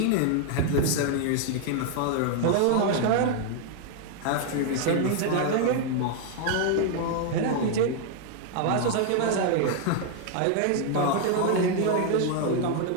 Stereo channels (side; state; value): both; different; correlation 0.00